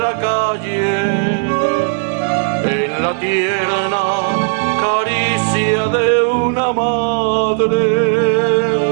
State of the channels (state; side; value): silent; left; 69 dB below the other